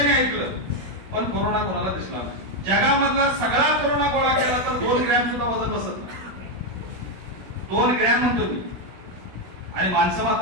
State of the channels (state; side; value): late; left; 16 ms